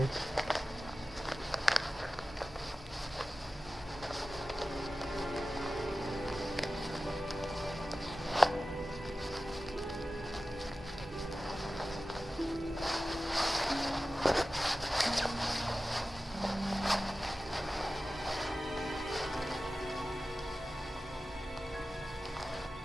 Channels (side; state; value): both; normal; correlation 0.95